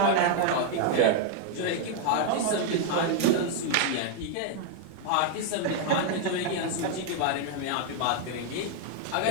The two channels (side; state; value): both; different; correlation 0.00